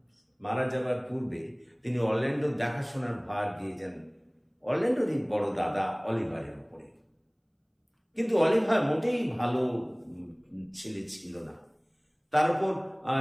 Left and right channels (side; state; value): both; identical; correlation 1.00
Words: মারা যাবার পূর্বে তিনি অরল্যান্ডোর দেখাশোনার ভার দিয়ে যান অরল্যান্ডোরই বড় দাদা অলিভারের উপরে। কিন্তু অলিভার মোটেই ভালো ছেলে ছিল না। তার উপর